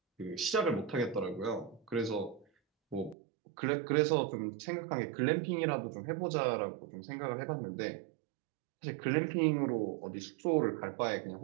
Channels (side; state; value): left; drops out; at 3.2 s